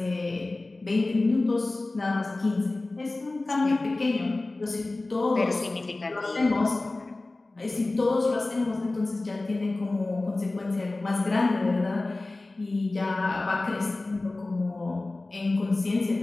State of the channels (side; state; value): right; quieter; 3.0 dB